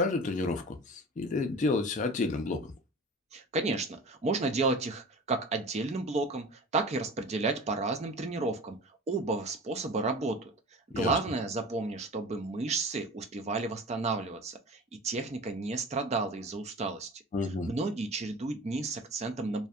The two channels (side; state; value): both; normal; correlation 0.37